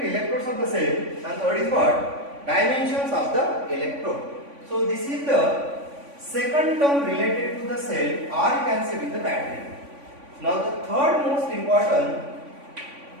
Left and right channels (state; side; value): late; left; 3.5 ms